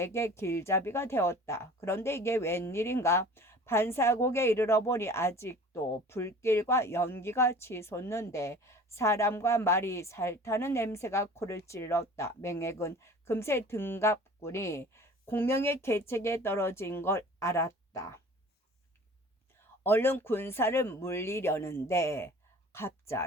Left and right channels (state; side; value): normal; both; correlation 0.45